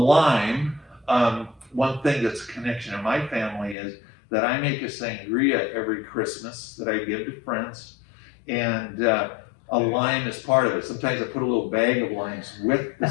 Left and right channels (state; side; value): drops out; right; at 3.8 s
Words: one thing that's a connection in my family is that I make a sangria every Christmas that I give to friends, and a lime is part of it. Sometimes I put a little bag of limes with the